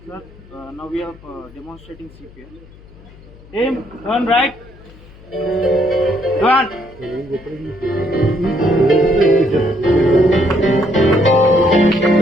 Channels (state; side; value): noise; left; hum, 22 dB below the sound